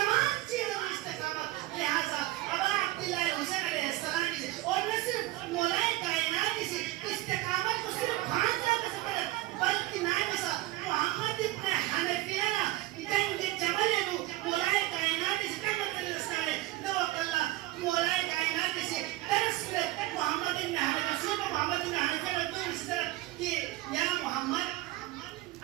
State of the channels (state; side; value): quieter; left; 17.7 dB